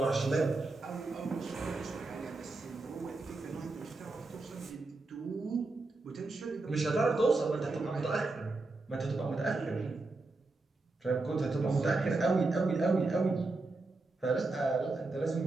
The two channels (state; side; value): quieter; left; 3.3 dB